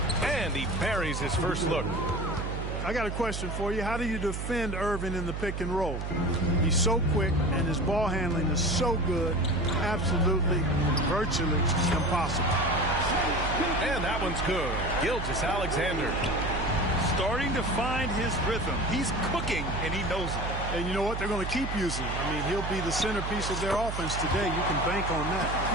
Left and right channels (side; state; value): right; noise; hum, 4 dB below the sound